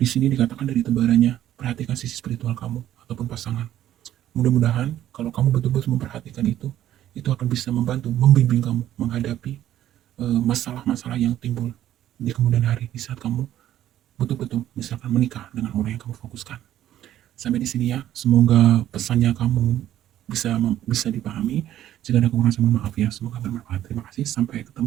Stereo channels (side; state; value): left; quieter; 12.3 dB